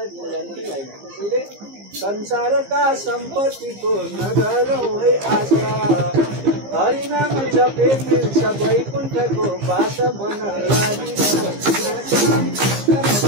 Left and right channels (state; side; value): late; left; 15 ms